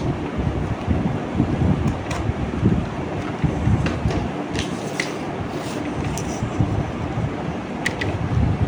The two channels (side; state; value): both; identical; correlation 1.00